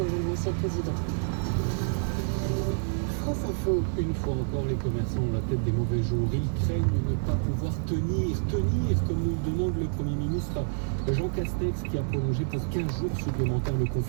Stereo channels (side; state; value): left; silent; digital silence